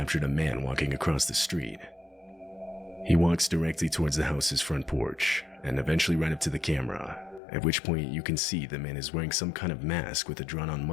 a man walking across the street. He walks directly towards the house's front porch and eventually right up to the camera, at which point you can see the man is wearing some kind of mask with a drawn-on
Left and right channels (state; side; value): drops out; right; at 7.4 s